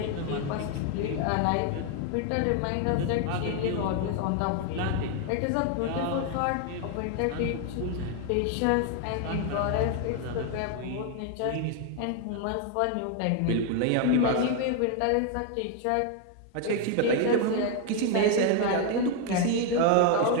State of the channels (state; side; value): different; both; correlation 0.01